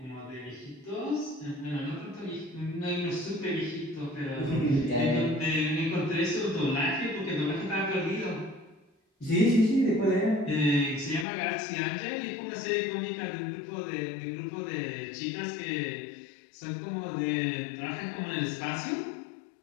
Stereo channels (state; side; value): drops out; right; at 11.2 s